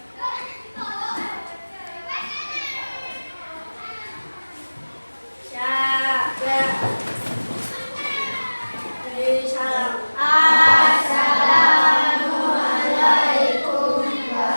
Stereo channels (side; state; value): both; inverted; correlation -1.00